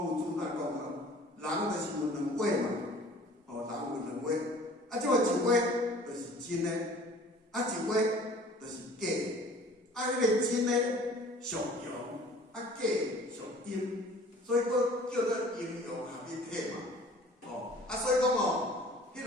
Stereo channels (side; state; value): both; normal; correlation 0.49